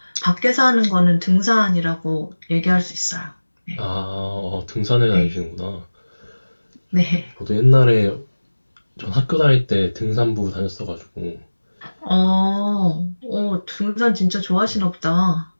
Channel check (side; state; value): both; inverted; correlation -1.00